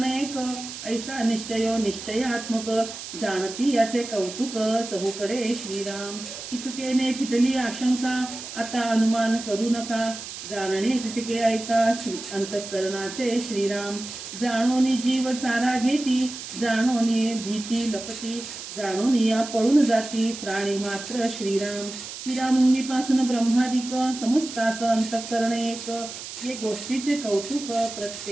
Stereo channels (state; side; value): noise; right; hiss, 10 dB below the sound